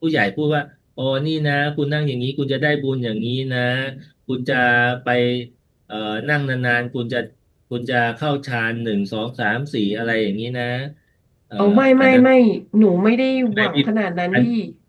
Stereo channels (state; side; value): identical; both; correlation 1.00